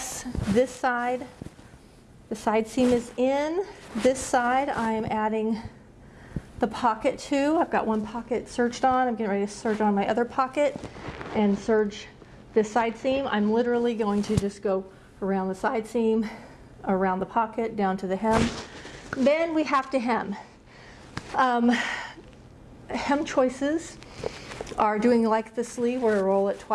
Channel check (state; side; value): identical; both; correlation 1.00